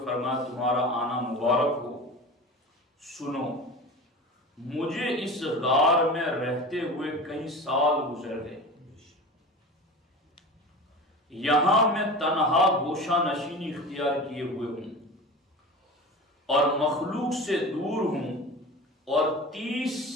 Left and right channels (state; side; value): normal; both; correlation 0.33